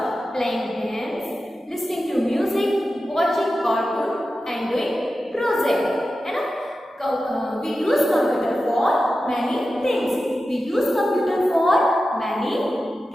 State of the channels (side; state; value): both; normal; correlation 0.93